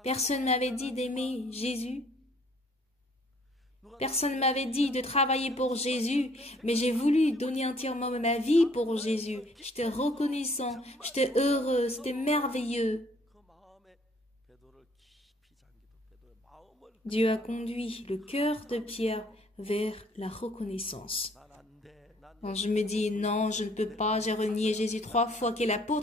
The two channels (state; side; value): normal; both; correlation 0.60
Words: Personne ne m'avait dit d'aimer Jésus. Personne ne m'avait dit de travailler pour Jésus, mais j'ai voulu donner entièrement ma vie pour Jésus. J'étais reconnaissant, j'étais heureux, c'était merveilleux. Dieu a conduit le cœur de Pierre vers la reconnaissance. Quand je me dis, non, je ne peux pas, j'ai renié Jésus 3 fois, quel